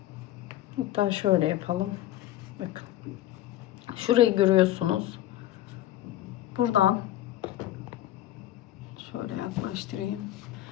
Hatta şöyle yapalım. Bakın. Şurayı görüyorsunuz. Buradan şöyle yaklaştırayım.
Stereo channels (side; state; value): right; quieter; 13.8 dB